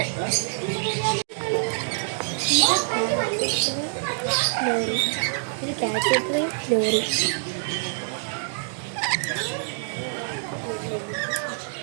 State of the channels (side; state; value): left; silent; digital silence